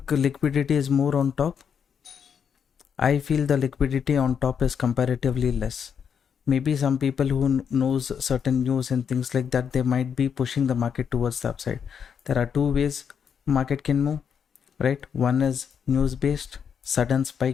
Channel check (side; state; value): right; quieter; 7.3 dB